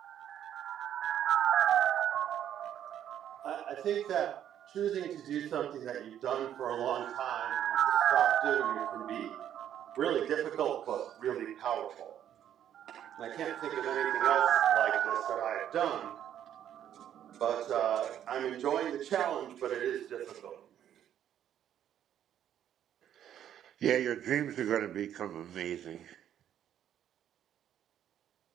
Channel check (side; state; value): left; quieter; 10.4 dB